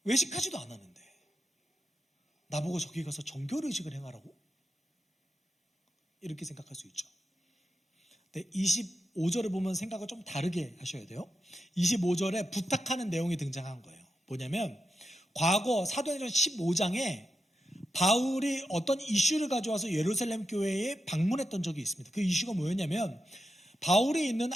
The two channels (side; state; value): both; normal; correlation 0.88